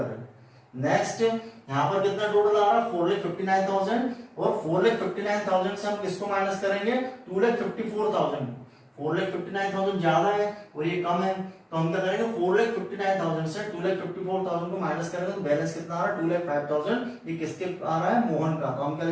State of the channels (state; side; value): identical; both; correlation 1.00